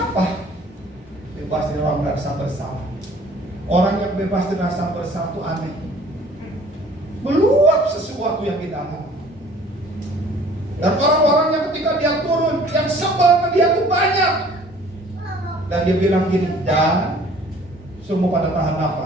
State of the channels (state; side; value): normal; both; correlation 0.52